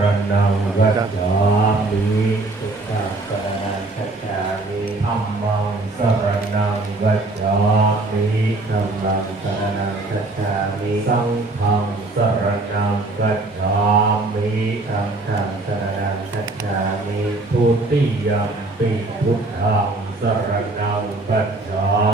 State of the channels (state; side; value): quieter; left; 3.0 dB